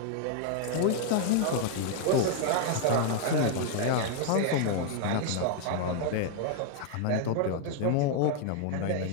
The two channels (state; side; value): different; both; correlation 0.00